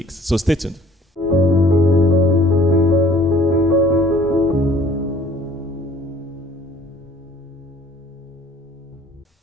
So stay tuned.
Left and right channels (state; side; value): normal; both; correlation 0.54